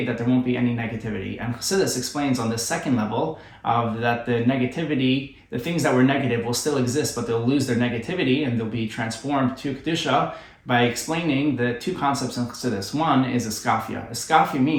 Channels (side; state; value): both; identical; correlation 1.00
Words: that there won't be any negativity. And Chassidus explains on the second level of that the negativity, the things that were negative will still exist, but they'll lose their negativity and they'll be transformed to Kedusha by explaining the two concepts in Chassidus. One is iskafia. Iskafia